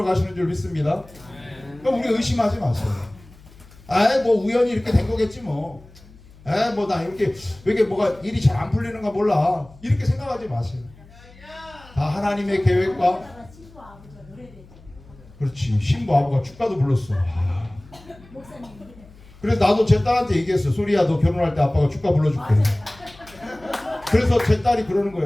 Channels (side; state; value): left; noise; hum, 23 dB below the sound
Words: 가시는 줄 믿습니다. 그러니까 우리 의심하지 마세요. 아이 뭐 우연히 이렇게 된 거겠지 뭐. 에이 뭐 나 이렇게 왜 이게 뭐가 일이 잘 안 풀리는가 몰라. 이렇게 생각하지 마세요. 다 하나님의 계획과. 그렇지. 신부 아버가 축가도 불렀어. 그래서 나도 제 딸한테 얘기했어. 소리야 너 결혼할 때 아빠가 축가 불러줄게. 그래서 제 딸이 그러는